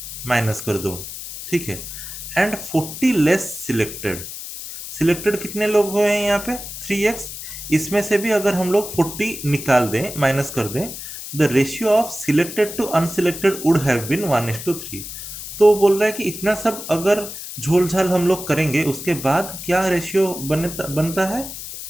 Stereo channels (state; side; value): noise; left; hiss, 10 dB below the sound